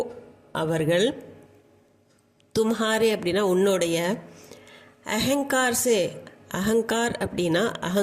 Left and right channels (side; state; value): both; identical; correlation 1.00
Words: அவர்கள், தும்ஹாரே அப்படின்னா உன்னுடைய, அஹங்கார் சே, அகங்கார் அப்படின்னா